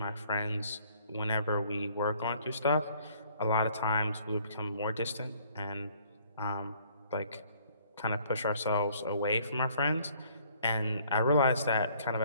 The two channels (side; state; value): both; inverted; correlation -0.61